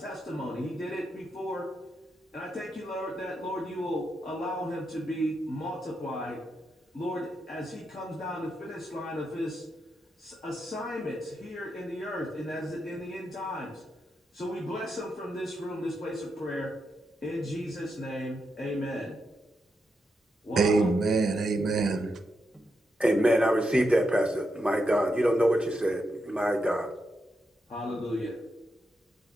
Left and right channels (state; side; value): normal; both; correlation 0.84